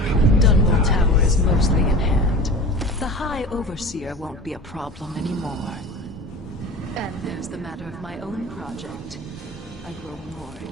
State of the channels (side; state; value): both; normal; correlation 0.35